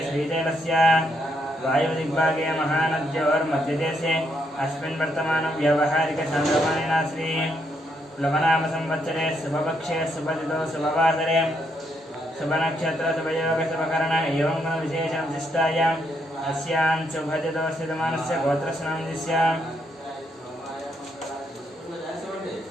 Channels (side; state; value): both; normal; correlation 0.76